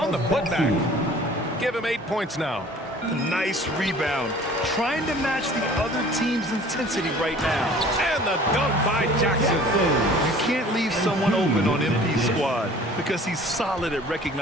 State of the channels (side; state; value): both; normal; correlation 0.48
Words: the putback. Give him 8 points now. Nice rebound. Trying to match the other team's intensity right now. And the dunk by Jackson. You can't leave someone open on MP's squad because he's solid at